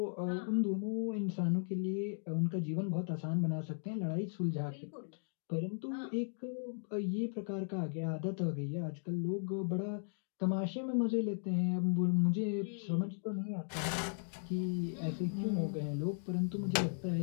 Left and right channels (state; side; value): silent; right; digital silence